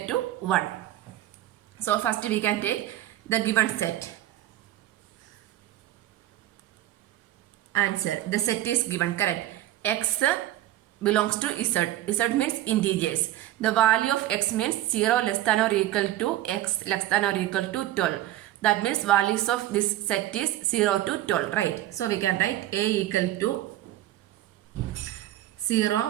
to 1. So first we can take the given set. Answer. The set is given. Correct. X belongs to Z. Z means integers. The value of x means 0 less than or equal to x less than or equal to 12. That means values of this set is 0 to 12. Right. So we can write A equal to 0,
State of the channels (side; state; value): left; quieter; 14.3 dB